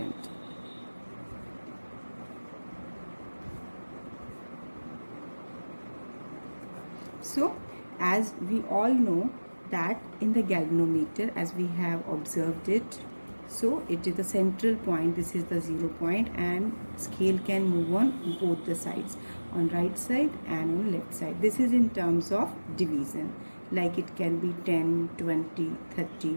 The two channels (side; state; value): both; inverted; correlation -1.00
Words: So, as we all know that in the galvanometer, as we have observed it, so it is the central point, this is the 0 point, and scale can move on both the sides, on right side and on left side. This is in terms of division, like it can be 10, 20,